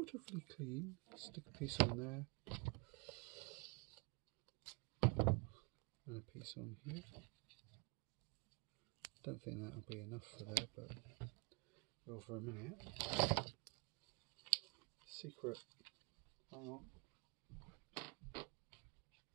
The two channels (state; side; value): quieter; left; 29.2 dB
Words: clean. Stick a piece on there, and a piece on here. Don't think that'll be enough for there, but well, for a minute. Secret. Hang on.